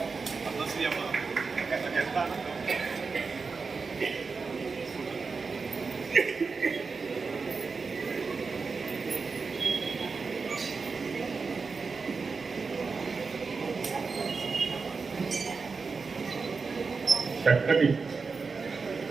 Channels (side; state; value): left; quieter; 4.7 dB